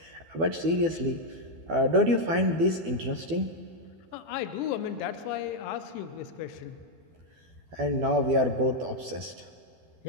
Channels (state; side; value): late; left; 12 ms